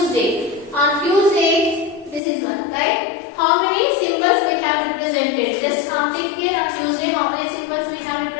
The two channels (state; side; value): drops out; right; at 2.2 s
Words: On Tuesday, this is one, right? How many symbols we have represented? Just count it here. On Tuesday, how many symbols we have